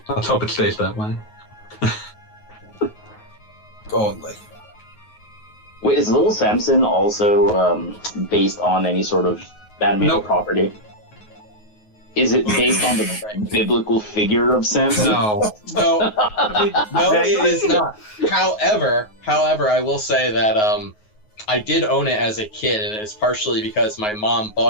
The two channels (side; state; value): right; late; 9.4 ms